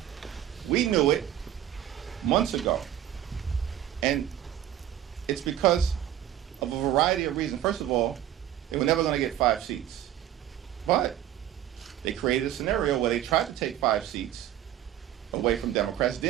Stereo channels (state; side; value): quieter; left; 11.6 dB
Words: We knew it months ago. And it's because of a variety of reasons. First of all, they were never going to get 5 seats. But they created a scenario where they tried to take 5 seats away from Democrats,